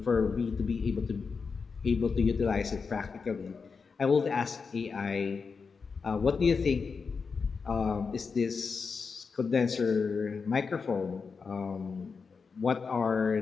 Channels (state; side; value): quieter; right; 5.2 dB